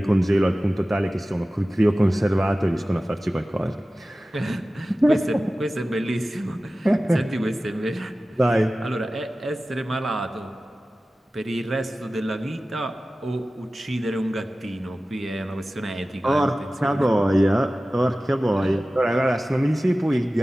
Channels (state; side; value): normal; both; correlation 0.96